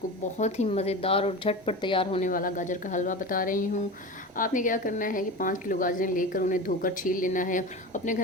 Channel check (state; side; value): normal; both; correlation 0.29